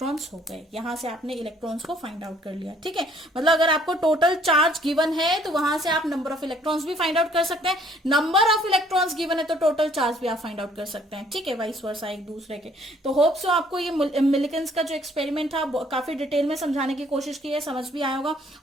हो गए। यहां से आपने इलेक्ट्रॉन्स को फाइंड आउट कर लिया, ठीक है। मतलब अगर आपको टोटल चार्ज गिवन है तो वहां से आप नंबर ऑफ इलेक्ट्रॉन्स भी फाइंड आउट कर सकते हैं, नंबर ऑफ इलेक्ट्रॉन्स गिवन है तो टोटल चार्ज भी आप फाइंड आउट कर सकते हैं, ठीक है, वाइस वर्सा एक दूसरे के। तो होप सो आपको ये मिलिकन्स का जो एक्सपेरिमेंट था काफी डिटेल में समझाने की कोशिश की है, समझ भी आया होगा।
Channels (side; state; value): both; normal; correlation 0.61